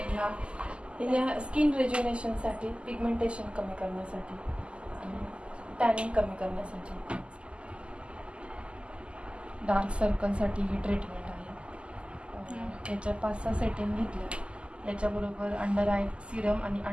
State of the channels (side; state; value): left; late; 0.053 ms